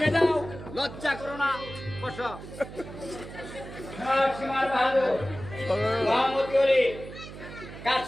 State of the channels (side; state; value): right; noise; hum, 13 dB below the sound